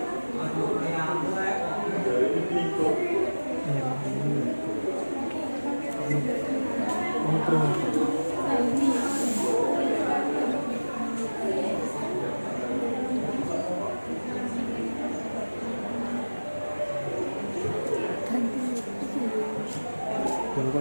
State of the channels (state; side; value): inverted; both; correlation -1.00